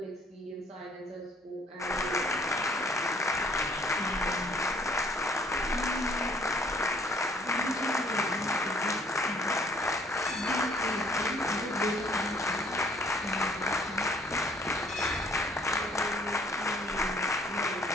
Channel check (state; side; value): normal; both; correlation 0.59